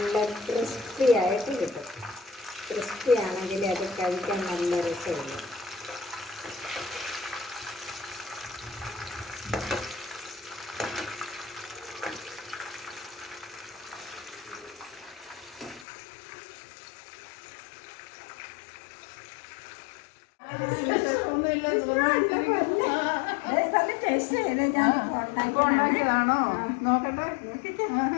ക്രിസ്പി ആയിട്ട് കിട്ടും. ക്രിസ്പി ആണെങ്കിൽ അത് കഴിക്കാൻ നല്ല രസമുള്ളൂ. ഉണ്ടാക്കിയതാണോ? നോക്കട്ടെ.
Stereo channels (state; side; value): drops out; right; at 15.9 s